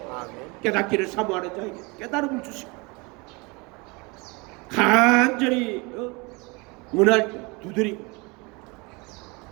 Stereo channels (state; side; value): quieter; left; 27.5 dB